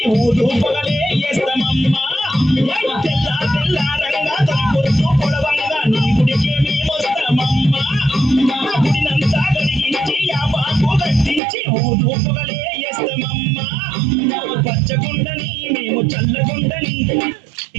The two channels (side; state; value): left; drops out; at 11.4 s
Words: ఊరు పొగలే వేస్తామమ్మా తెల్ల తెల్లారంగా తొలిపొద్దు పొడవంగా నీ గుడికే మేమొస్తామమ్మా గుడినంతా కడిగించి యాపాకు కట్టించి ఊరు పొగలే వేస్తామమ్మా పచ్చగుండని మేము చల్లగుండని